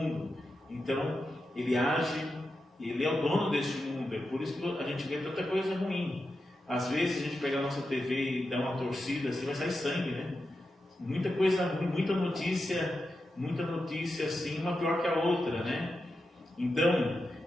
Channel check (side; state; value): both; normal; correlation 0.89